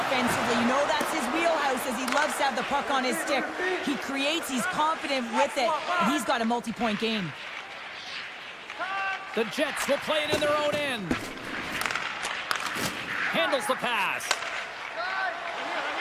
You know that's his wheelhouse, as he loves to have the puck on his stick. He creates, he's confident with it, and he's got a multi-point game. The Jets will play it in their own end. Handles the pass.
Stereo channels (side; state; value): both; identical; correlation 1.00